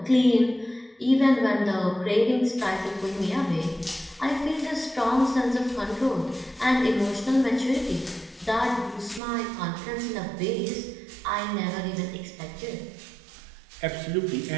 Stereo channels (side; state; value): left; drops out; at 9.2 s